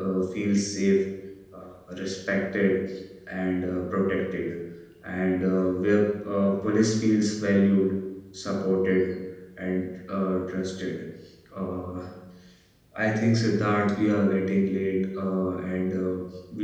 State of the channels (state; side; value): identical; both; correlation 1.00